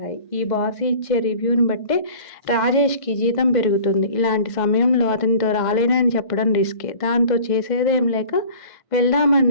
ఈ బాస్ ఇచ్చే రివ్యూని బట్టే రాజేష్కి జీతం పెరుగుతుంది. ఇలాంటి సమయంలో అతనితో రాలేనని చెప్పడం రిస్కే. దాంతో చేసేదేం లేక వెళ్దామని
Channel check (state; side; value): late; right; 2.0 ms